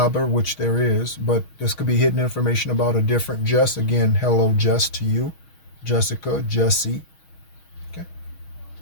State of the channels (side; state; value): right; late; 6.3 ms